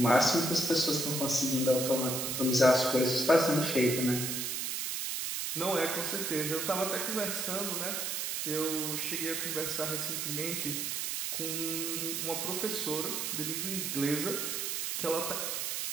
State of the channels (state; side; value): noise; right; hiss, 2 dB below the sound